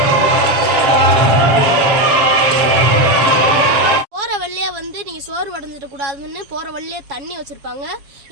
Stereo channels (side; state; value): left; late; 7.3 ms